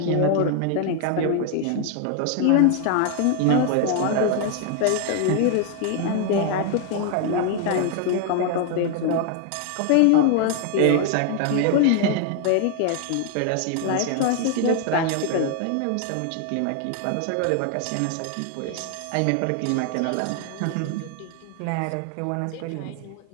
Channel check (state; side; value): different; both; correlation 0.00